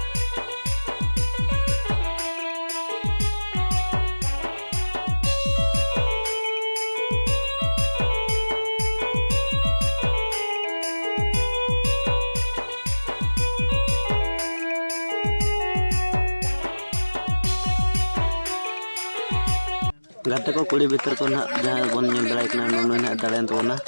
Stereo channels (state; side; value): inverted; both; correlation -1.00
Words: गाते को कुड़ी भीतर को ना जहाँ बन नेल दड़ा कना नुनु ना दड़ेन तबना